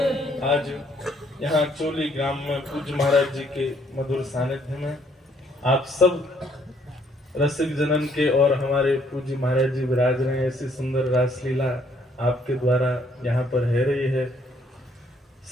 आज यहाँ चोली ग्राम में पूज्य महाराज जी के मधुर सानिध्य में आप सब रसिक जनन के और हमारे पूज्य महाराज जी विराज रहे हैं। ऐसी सुंदर रासलीला आपके द्वारा यहाँ पर है रही है।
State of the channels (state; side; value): normal; both; correlation 0.67